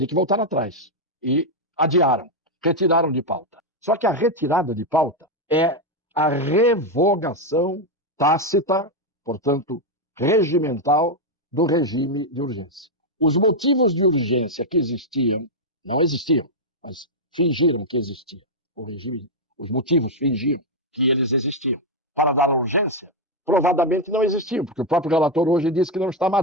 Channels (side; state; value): both; normal; correlation 0.01